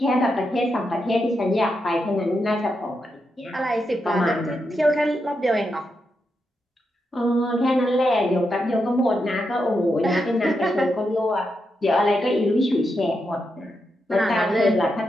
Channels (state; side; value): normal; both; correlation 0.85